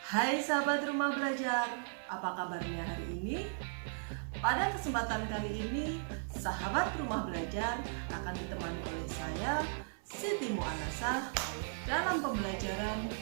Hai sahabat rumah belajar, apa kabarnya hari ini? Pada kesempatan kali ini, sahabat rumah belajar akan ditemani oleh saya, Siti Mu'anasah, dalam pembelajaran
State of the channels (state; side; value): silent; left; 53 dB below the other